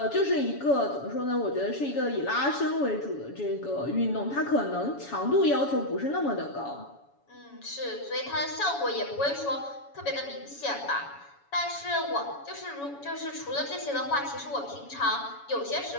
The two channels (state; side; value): late; right; 7.1 ms